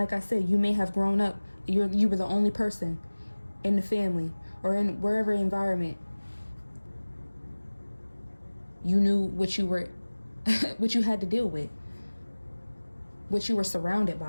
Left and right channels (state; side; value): inverted; both; correlation -1.00